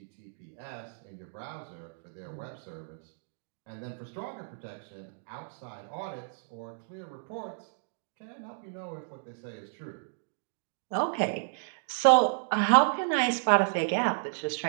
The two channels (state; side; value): silent; left; digital silence